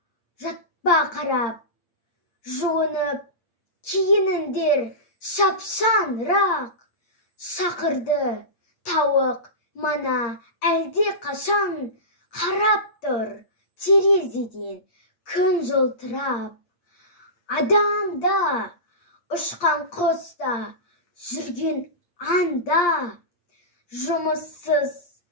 жатпа қарап. Жуынып, киініңдер шапшаңырақ. Шақырды тауық мана әлде қашан. Қарап тұр терезеден күн жылтырап. Адамда, ұшқан құста, жүрген анда. Жұмыссыз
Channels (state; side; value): late; right; 8.5 ms